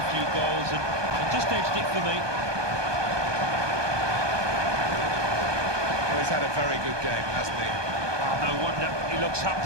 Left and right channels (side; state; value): left; late; 1.2 ms